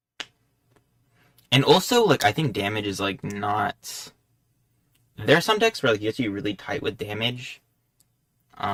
And also, like, I think damage is, like, not... There are some decks where, like, you have to be really tight with damage.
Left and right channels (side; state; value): both; identical; correlation 1.00